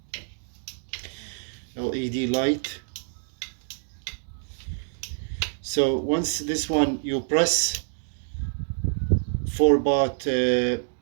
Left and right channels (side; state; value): left; silent; digital silence